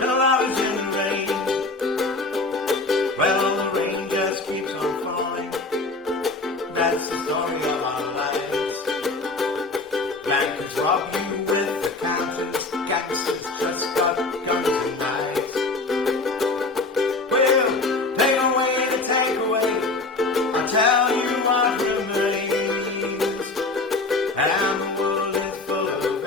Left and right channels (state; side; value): quieter; right; 3.4 dB